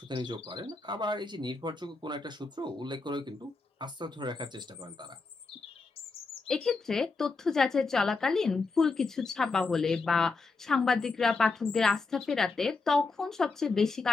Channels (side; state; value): right; quieter; 4.0 dB